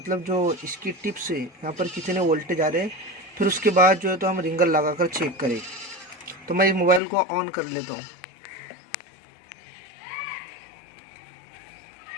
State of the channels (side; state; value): right; drops out; at 7.0 s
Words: जो इसकी टिप से यहाँ पर कितने वोल्टेज आ रहे हैं। फिर उसके बाद जो है तो हम रिंगर लगाकर चेक करें। तो मैं इस मोबाइल को ऑन कर लेता हूँ।